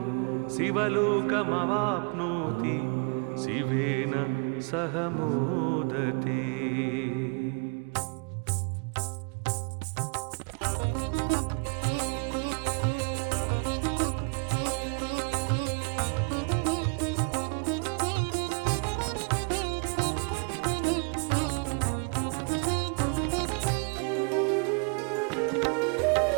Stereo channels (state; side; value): quieter; left; 36.5 dB